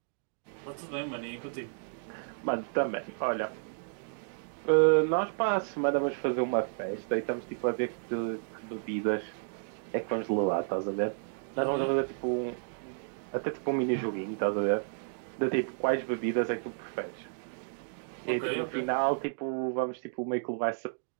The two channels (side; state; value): left; silent; digital silence